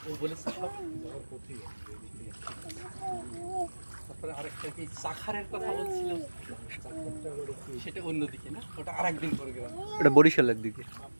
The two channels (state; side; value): inverted; both; correlation -1.00